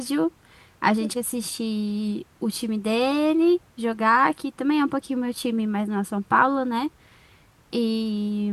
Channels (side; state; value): both; identical; correlation 1.00